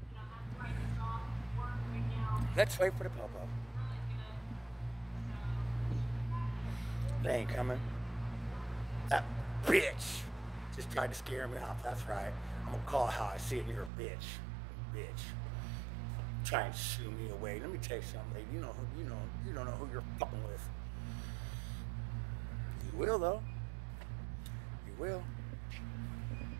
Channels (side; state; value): left; drops out; at 13.9 s